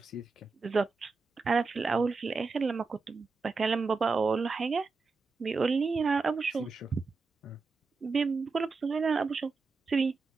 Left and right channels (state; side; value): quieter; left; 4.3 dB